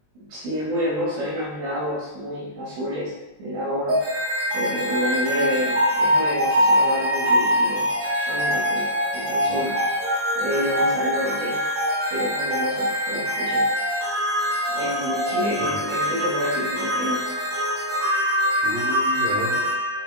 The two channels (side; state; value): left; late; 20 ms